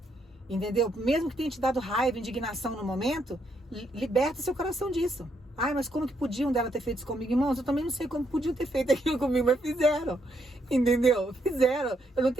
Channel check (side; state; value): both; normal; correlation 0.75